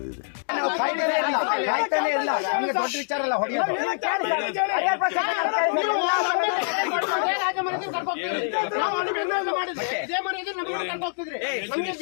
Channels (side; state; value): right; silent; digital silence